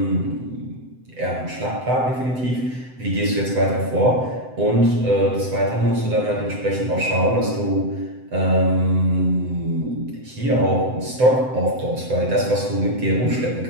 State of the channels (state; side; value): late; left; 7.9 ms